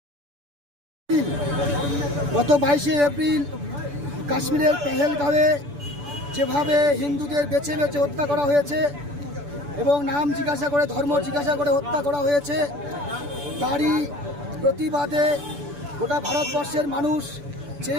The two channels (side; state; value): left; late; 6.9 ms